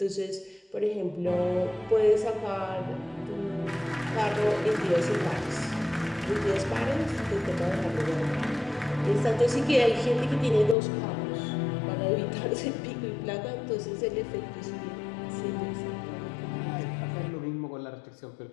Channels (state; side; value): drops out; right; at 10.8 s